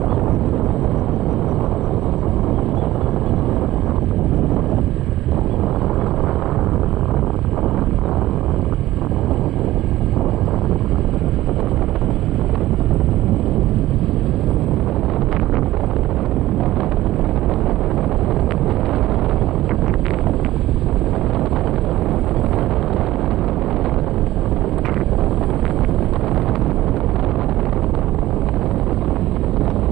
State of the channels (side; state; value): left; quieter; 15.8 dB